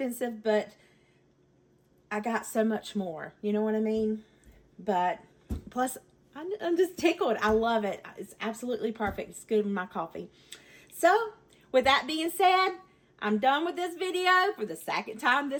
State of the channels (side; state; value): both; identical; correlation 1.00